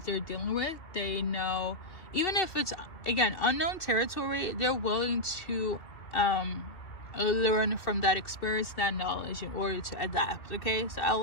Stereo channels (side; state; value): right; late; 2.6 ms